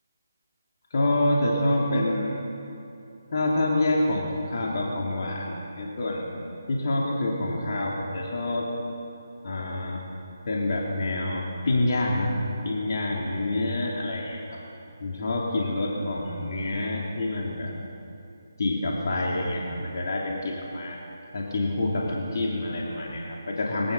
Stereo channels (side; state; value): both; inverted; correlation -0.87